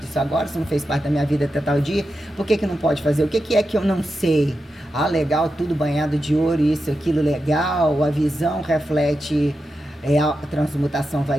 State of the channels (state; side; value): normal; both; correlation 0.89